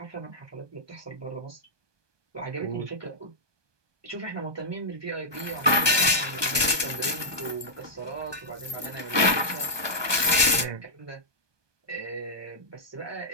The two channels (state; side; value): late; left; 1.2 ms